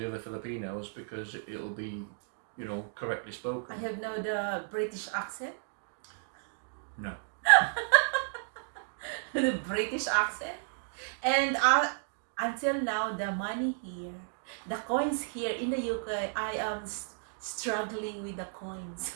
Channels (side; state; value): left; silent; digital silence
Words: other Filipinos, because it'll be, correctly spoken. I have now the British accent. No. The British accent. And until now, the money here, the coins here in the UK, I am struggling with the coins.